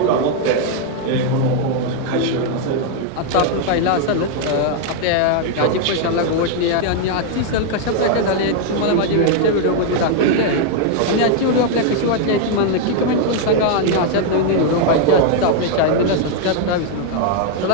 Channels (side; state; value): both; different; correlation 0.00